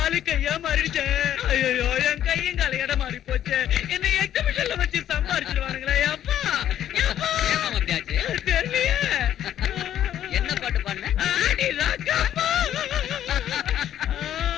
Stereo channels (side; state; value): right; quieter; 11.1 dB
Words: கையா மாறிடுச்சு. ஐயோ, என் கையும் கால இடம் மாறி போச்சு. என்ன எக்ஸிபிஷன்ல வச்சு சம்பாரிச்சிருவானுங்களே. அப்பா தெரியலையே. என்ன பாட்டு பாடுன? ஆடி ராக்கம்மா,